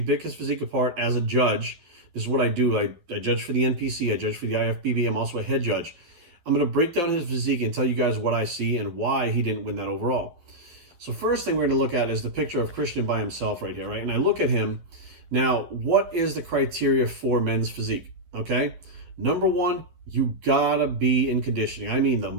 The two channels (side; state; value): left; late; 12 ms